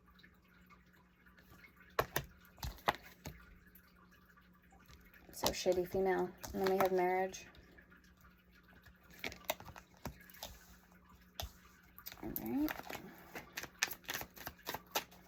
So shady female. And then we have marriage. Alright.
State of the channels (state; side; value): identical; both; correlation 1.00